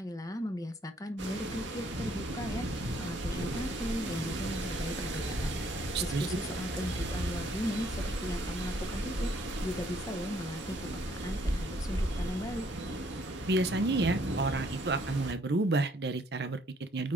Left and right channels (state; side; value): normal; both; correlation 0.66